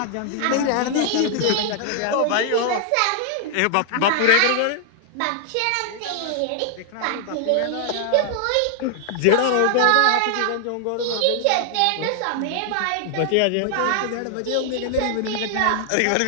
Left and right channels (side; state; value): both; different; correlation 0.00